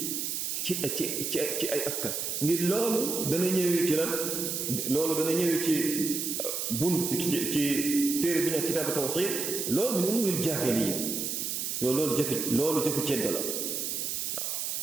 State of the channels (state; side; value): noise; right; hiss, 2 dB below the sound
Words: ay askan ngir loolu dana ñëwee ci lan loolu dana ñëwee ci bunt ci téere bi nekk kitaabu tawxiid loolu min umuril jaahiliya loolu jëfu ceddo la waaw